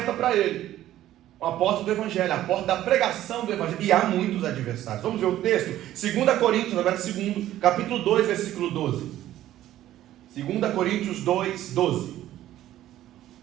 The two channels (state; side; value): quieter; left; 13.4 dB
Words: para ele. A porta do Evangelho, a porta da pregação do Evangelho. E há muitos adversários. Vamos ver o texto? 2 Coríntios, agora capítulo 2, versículo 12. 2 Coríntios 2, 12.